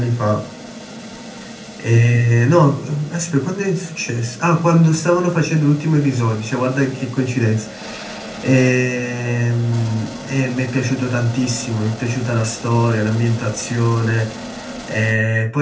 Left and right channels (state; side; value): identical; both; correlation 1.00